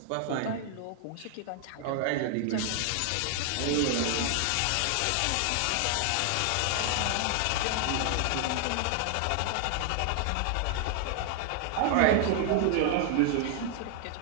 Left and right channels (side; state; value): both; different; correlation 0.00